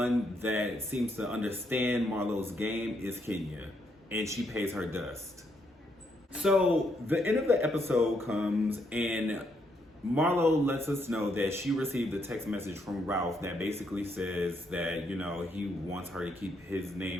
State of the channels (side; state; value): both; normal; correlation 0.75